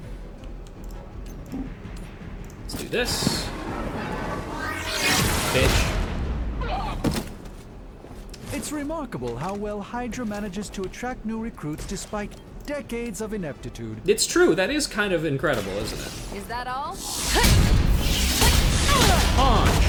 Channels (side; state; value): both; identical; correlation 1.00